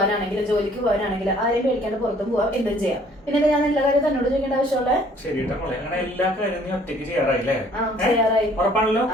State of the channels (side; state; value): both; normal; correlation 0.58